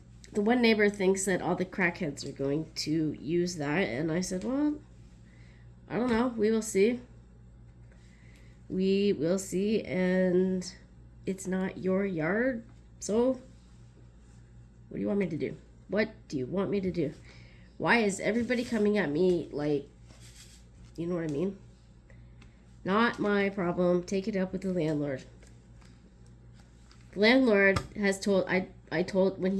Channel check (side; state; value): both; identical; correlation 1.00